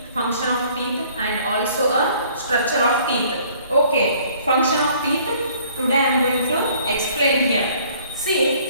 function of teeth and also a structure of teeth. Okay, function of teeth, today I am going to explain here.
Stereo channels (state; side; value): inverted; both; correlation -0.57